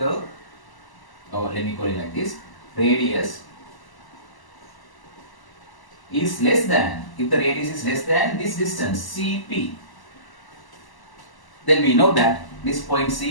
or let me call it like this, radius is less than, if the radius is less than this distance CP, then we know that this point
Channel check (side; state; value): right; late; 1.0 ms